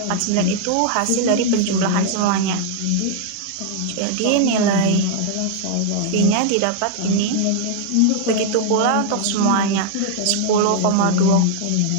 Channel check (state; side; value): different; both; correlation 0.00